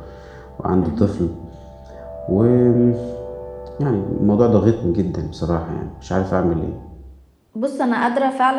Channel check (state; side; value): identical; both; correlation 1.00